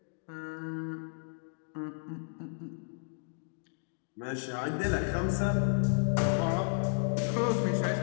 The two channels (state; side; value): silent; right; digital silence